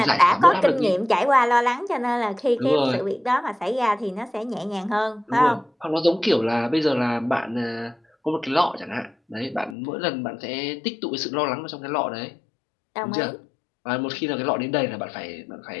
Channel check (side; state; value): right; drops out; at 9.8 s